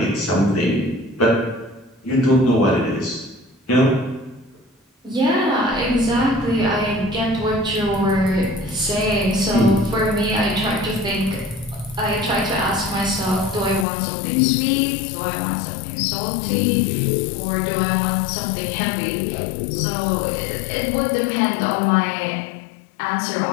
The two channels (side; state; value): right; drops out; at 13.9 s